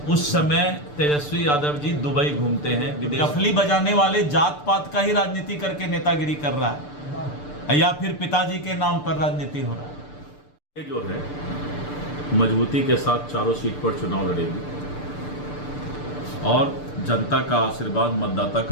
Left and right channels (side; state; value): right; late; 6.8 ms